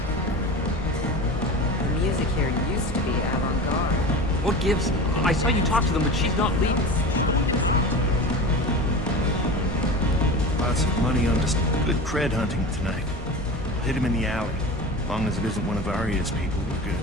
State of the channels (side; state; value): both; normal; correlation 0.31